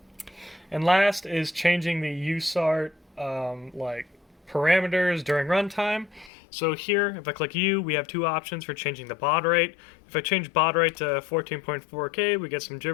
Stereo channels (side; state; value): right; drops out; at 6.3 s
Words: And last is changing the USART like parameters during runtime. So here, if I click U, we have two options for changing the baud rate. If I change baud rate to 14.4K, we get some